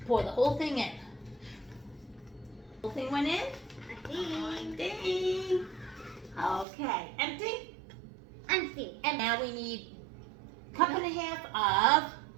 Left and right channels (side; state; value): left; drops out; at 6.7 s